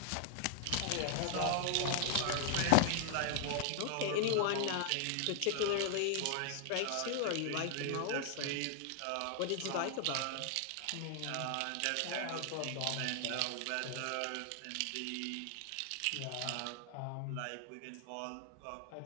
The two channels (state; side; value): different; both; correlation 0.00